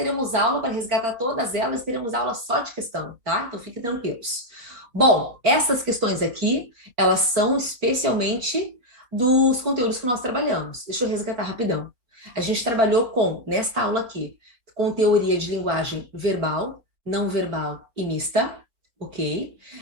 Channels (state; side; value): late; left; 4.2 ms